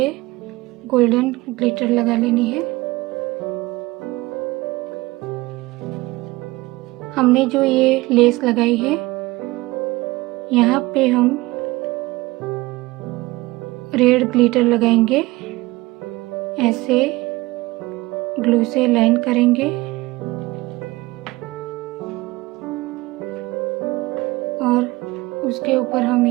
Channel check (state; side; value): quieter; left; 20.6 dB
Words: गोल्डन ग्लिटर लगा लेनी है। हमने जो ये लेस लगाई है यहाँ पे हम रेड ग्लिटर लगाएंगे, ऐसे ग्लू से लाइन करेंगे और उसके ऊपर हम